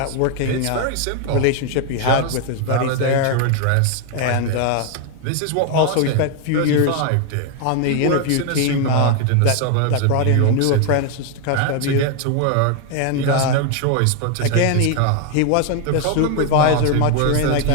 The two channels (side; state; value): both; different; correlation 0.01